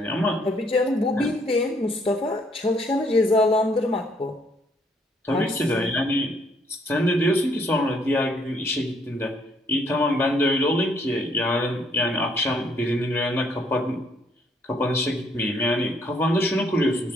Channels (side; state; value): both; normal; correlation 0.68